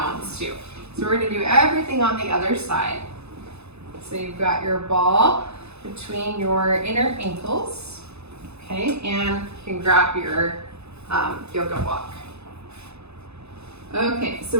too. So we're going to do everything on the other side. So you've got your ball between your inner ankles, okay, and you can grab your yoga block. Okay, so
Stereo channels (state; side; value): late; left; 0.80 ms